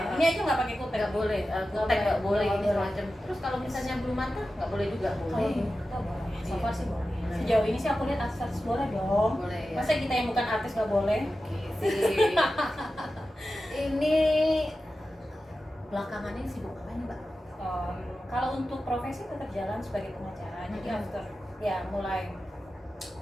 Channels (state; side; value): normal; both; correlation 0.93